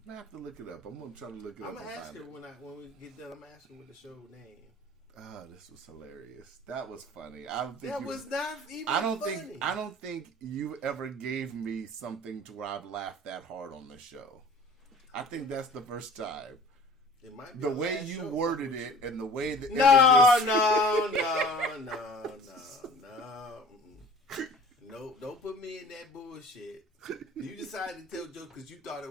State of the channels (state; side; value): normal; both; correlation 0.45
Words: going to have to look it up. I'm going to try to look it up. I'm going to ask her when we get done. I'm going to ask her what the show name. Oh, this was hilarious. That was funny. I don't think that was not even funny. I don't think you ever gave me something to where I've laughed that hard on the show. I think that's the first time. It might be the way you worded it and the way that No, don't put me in that bullshit. You decided to tell jokes because you thought